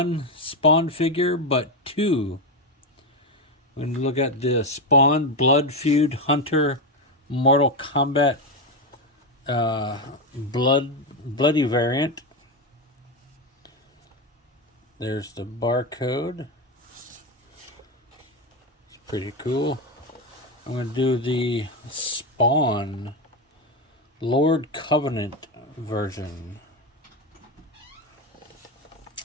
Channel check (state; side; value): normal; both; correlation 0.11